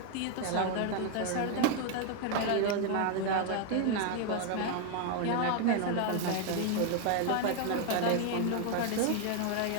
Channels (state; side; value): different; both; correlation 0.01